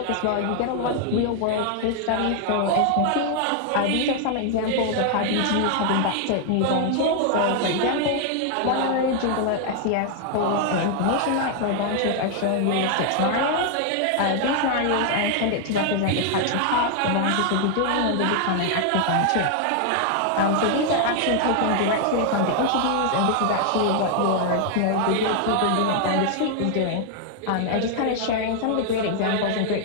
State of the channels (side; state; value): both; different; correlation 0.00